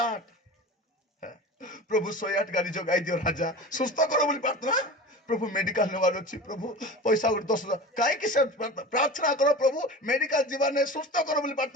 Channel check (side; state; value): both; normal; correlation 0.33